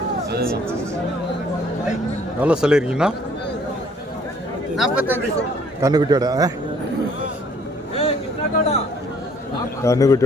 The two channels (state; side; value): normal; both; correlation 0.60